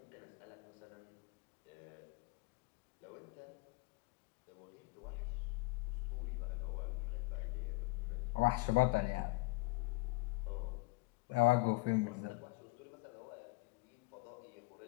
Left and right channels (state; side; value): quieter; right; 23.9 dB